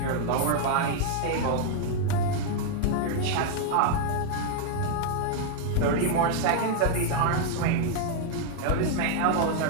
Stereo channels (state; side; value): different; both; correlation 0.00